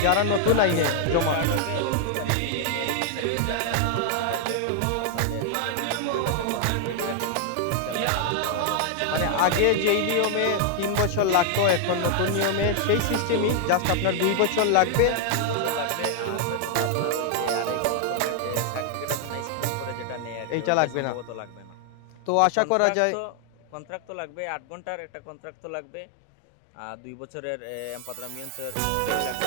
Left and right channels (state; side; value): different; both; correlation 0.00